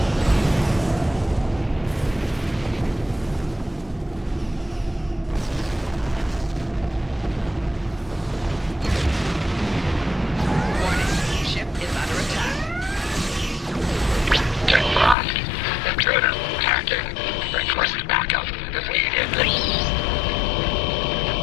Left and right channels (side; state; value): right; drops out; at 15.2 s